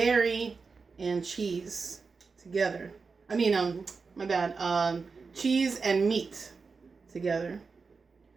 and cheese together. I mean, my bad. Cheese and meat together.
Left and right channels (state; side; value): quieter; left; 4.7 dB